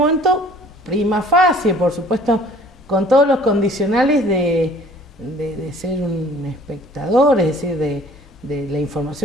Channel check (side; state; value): both; normal; correlation 0.53